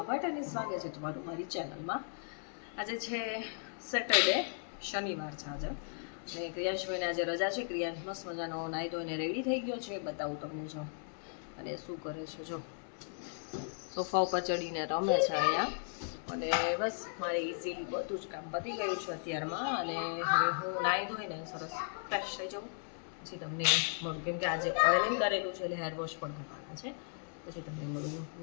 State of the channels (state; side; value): silent; right; 54 dB below the other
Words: ભટ્ટ અને સ્વાગત છે તમારું મારી ચેનલમાં. આજે છે સેટરડે, શનિવાર છે આજે, અને ક્રિયાંશભાઈને આજે રજા છે. ક્રિયાંશ મસ્ત મજાનો નાહી ધોઈને રેડી થઈ ગયો છે. બતાવું તમને જો, અને શું કરે છે જો, સોફા ઉપર ચડીને રમે છે અહીંયા. અને બસ મારે ઇઝીલી બધું જ કામ પતી ગયું છે અત્યારમાં. અને હવે હું નાહી ધોઈને સરસ ફ્રેશ થઈ જાઉં, પછી તમને મળું, કેમ કે આજે ઓઇલિંગ કરેલું છે એટલે હેર વોશ પણ કરવાના છે. પછી તમને મળું